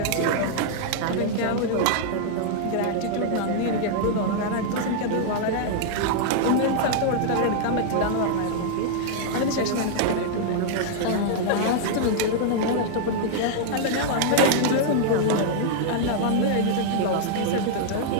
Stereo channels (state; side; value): different; both; correlation -0.01